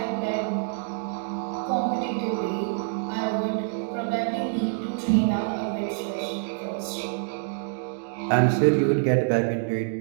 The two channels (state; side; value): silent; left; digital silence